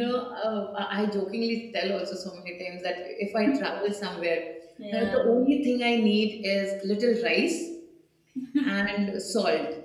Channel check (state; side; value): identical; both; correlation 1.00